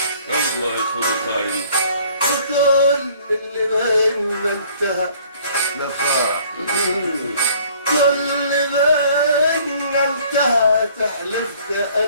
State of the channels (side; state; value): both; inverted; correlation -0.57